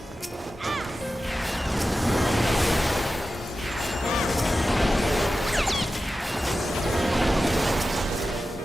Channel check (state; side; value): normal; both; correlation 0.93